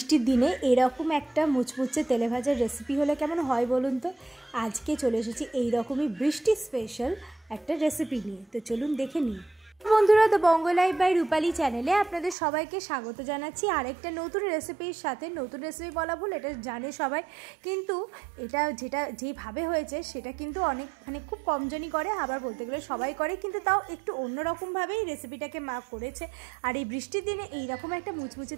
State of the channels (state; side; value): drops out; left; at 12.4 s